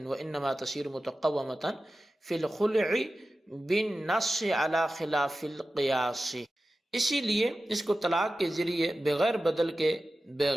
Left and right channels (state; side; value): normal; both; correlation 0.94